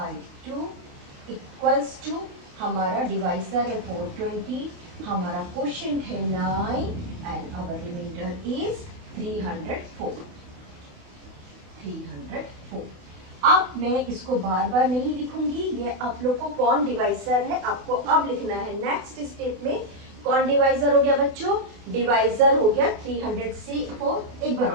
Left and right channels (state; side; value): late; left; 28 ms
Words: इक्वल्स टू हमारा डिवाइसर है 420, हमारा क्वोशिएंट है 9 एंड आवर रिमाइंडर इज 304। अब मैं इसको बार बार नहीं लिखूंगी, ये आप लोग को कौन डिवाइसर है आपको अब लिखना है। नेक्स्ट स्टेप में कौन डिवाइसर हो गया बच्चों, डिवाइसर हो गया 304। एक बार